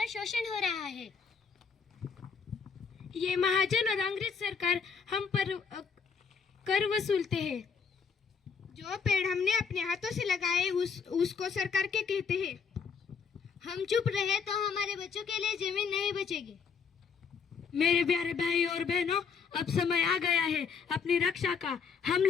शोषण हो रहा है। ये महाजन और अंग्रेज सरकार हम पर कर वसूलते हैं। जो पेड़ हमने अपने हाथों से लगाए उसको सरकार के कहते हैं। हम चुप रहे तो हमारे बच्चों के लिए जमीन नहीं बचेगी। मेरे प्यारे भाई और बहनों, अब समय आ गया है अपनी रक्षा का। हम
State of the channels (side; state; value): right; quieter; 5.9 dB